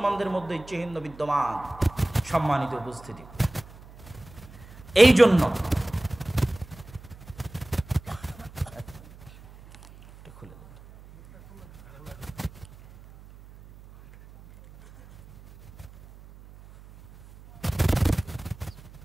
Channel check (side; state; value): right; noise; hum, 20 dB below the sound